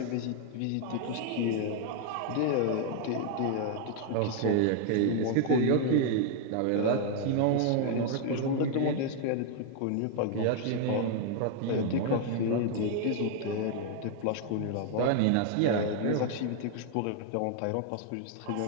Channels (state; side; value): different; both; correlation 0.00